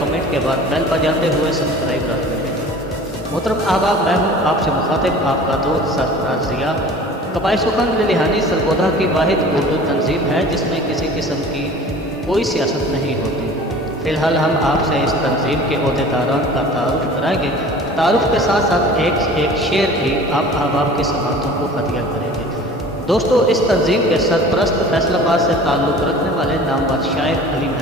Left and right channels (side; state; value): both; normal; correlation 0.43